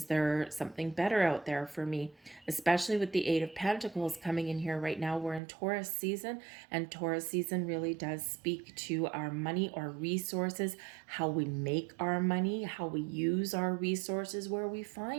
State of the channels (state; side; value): drops out; left; at 5.4 s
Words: there something better out there for me? Especially with the Eight of Pentacles coming in here right now. We're in Taurus season, and Taurus season really does speak to our money or resources, how we make our money, how we use our resources, where we